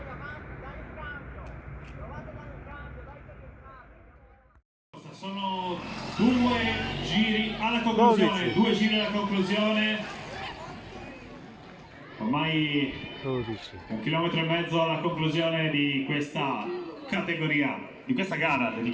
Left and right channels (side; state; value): both; identical; correlation 1.00